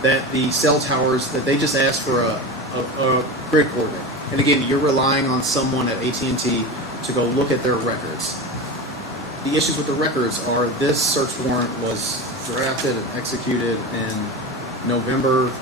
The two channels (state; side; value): normal; both; correlation 0.25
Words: the cell towers, that they just ask for a grid coordinate. And again, you're relying on someone at AT&T to go look at their records. The issues with the records are this search warrant was drafted and executed in November